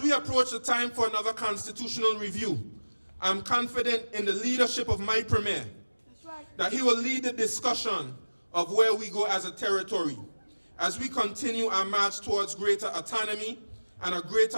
we approach the time for another constitutional review, I'm confident in the leadership of my Premier that he will lead the discussion of where we go as a territory, as we continue our march towards greater autonomy and a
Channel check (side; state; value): both; inverted; correlation -1.00